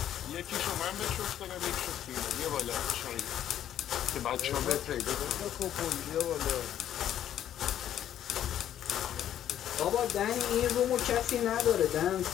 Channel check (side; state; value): right; quieter; 10.9 dB